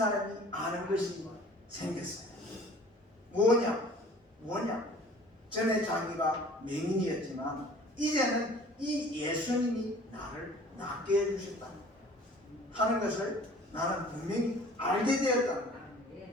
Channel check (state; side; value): normal; both; correlation 0.49